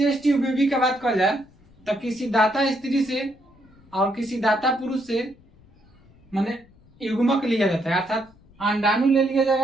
ट्यूब बेबी की बात कर जाए तो किसी दाता स्त्री से और किसी दाता पुरुष से माने युग्मक लिया जाता है, अर्थात अंडाणु ले लिया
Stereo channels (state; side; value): noise; left; rumble, 28 dB below the sound